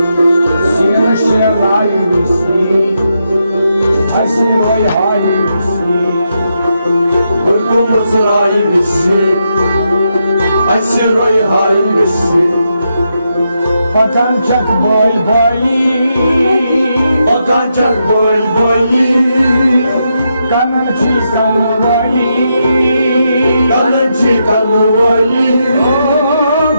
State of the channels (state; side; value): inverted; both; correlation -0.82